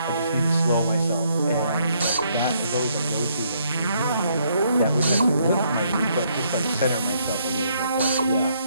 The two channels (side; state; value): both; inverted; correlation -0.71